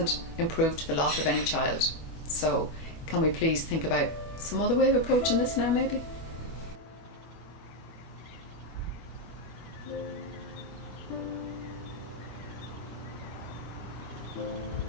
improved the lot of any child. So can we please think about some other way of approaching this now, maybe?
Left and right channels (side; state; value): right; late; 25 ms